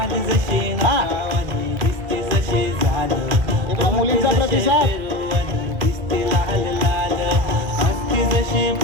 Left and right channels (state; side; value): late; left; 2.4 ms